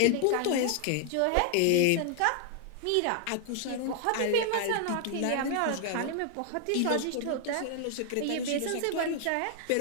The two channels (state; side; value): different; both; correlation 0.00